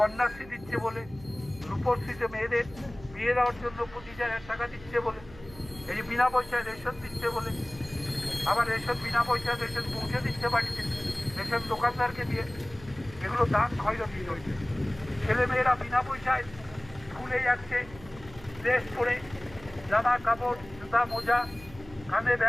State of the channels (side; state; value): right; noise; hum, 19 dB below the sound